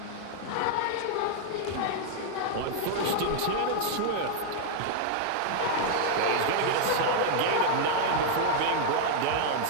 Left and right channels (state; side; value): different; both; correlation -0.01